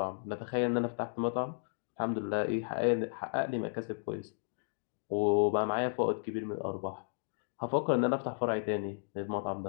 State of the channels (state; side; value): silent; right; digital silence